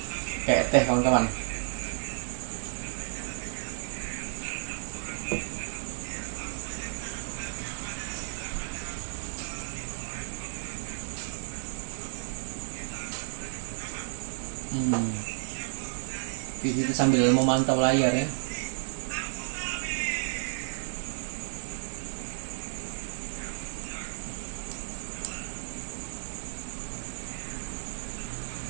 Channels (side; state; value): left; silent; 57 dB below the other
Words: teh kawan-kawan. Kita sambil memantau layar ya.